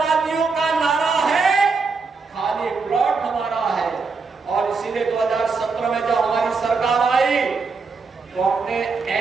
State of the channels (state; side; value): quieter; left; 4.6 dB